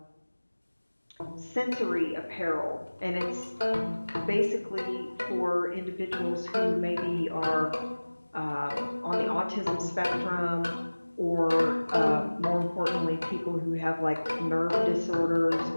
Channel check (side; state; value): both; inverted; correlation -1.00